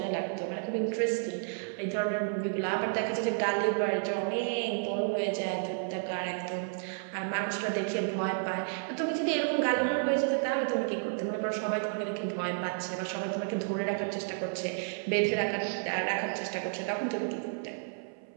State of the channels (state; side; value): silent; left; 57 dB below the other